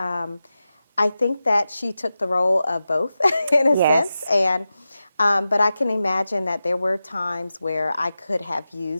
I think that she took the role of both in a sense. Yes. And but I can imagine that there were times where I could have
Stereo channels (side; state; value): both; inverted; correlation -0.93